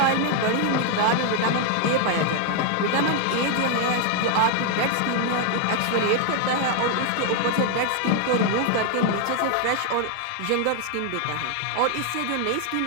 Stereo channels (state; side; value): different; both; correlation 0.00